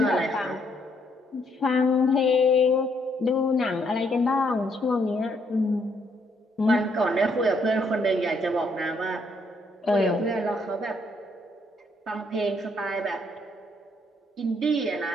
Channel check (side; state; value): both; normal; correlation 0.71